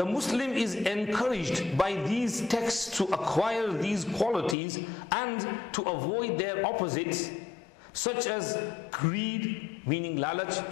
Muslim is encouraged by these texts to acquire these qualities and to avoid their opposites, such as greed, meaning lalach,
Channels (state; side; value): drops out; right; at 4.5 s